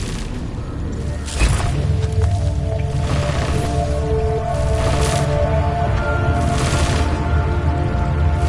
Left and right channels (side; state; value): both; identical; correlation 1.00